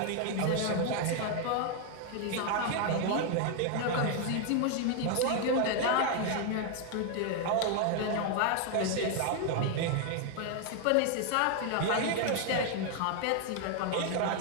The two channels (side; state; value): both; different; correlation 0.00